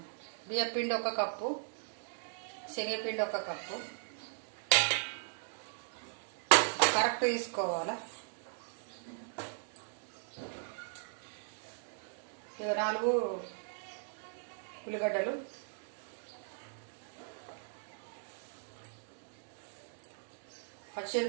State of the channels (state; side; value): silent; left; digital silence